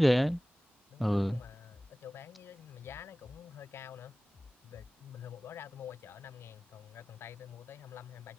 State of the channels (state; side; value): normal; both; correlation 0.97